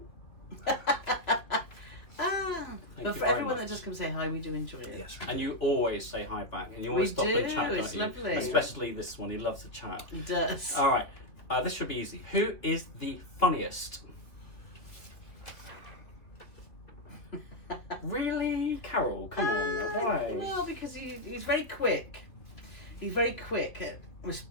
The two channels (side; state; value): right; late; 2.7 ms